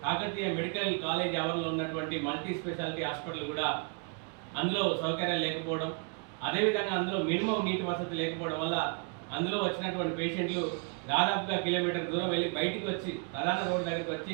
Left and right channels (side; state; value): left; quieter; 34.4 dB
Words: కాకతీయ మెడికల్ కాలేజ్ ఆవరణలో ఉన్నటువంటి మల్టీ స్పెషాలిటీ హాస్పిటల్ కూడా అందులో సౌకర్యాలు లేకపోవడం, అదేవిధంగా అందులో మినిమం నీటి వసతి లేకపోవడం వల్ల అందులో వచ్చినటువంటి పేషెంట్లు దాదాపుగా కిలోమీటర్ దూరం వెళ్ళి బయటికి వచ్చి ప్రధాన రోడ్డు దగ్గరికి